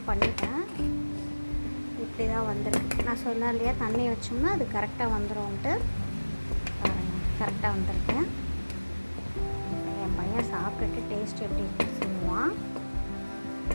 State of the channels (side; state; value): both; inverted; correlation -1.00